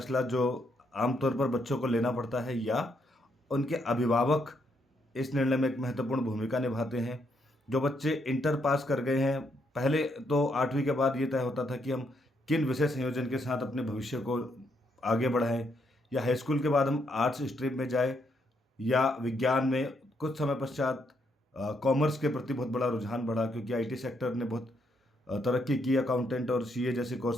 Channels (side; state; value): both; normal; correlation 0.75